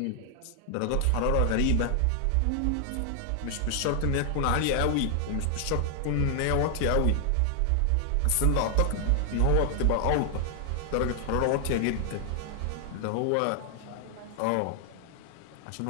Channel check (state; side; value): different; both; correlation 0.00